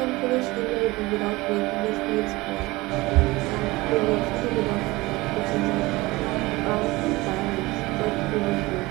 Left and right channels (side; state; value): left; quieter; 21.3 dB